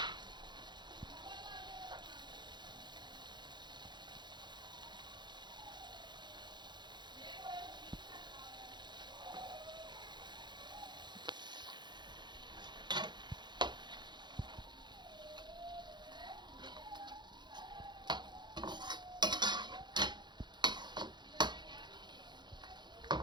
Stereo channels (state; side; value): late; left; 0.21 ms